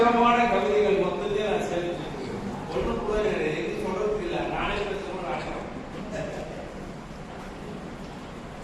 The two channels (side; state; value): both; identical; correlation 1.00